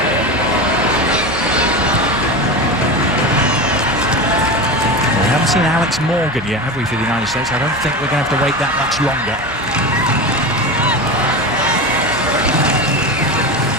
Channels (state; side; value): normal; both; correlation 0.24